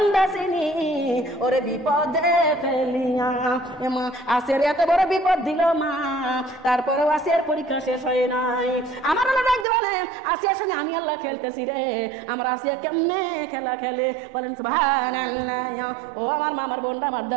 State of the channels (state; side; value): drops out; left; at 9.7 s